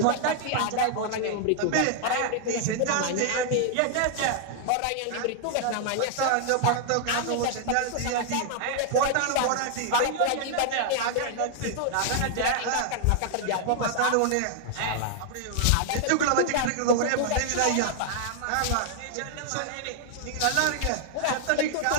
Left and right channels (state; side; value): different; both; correlation -0.01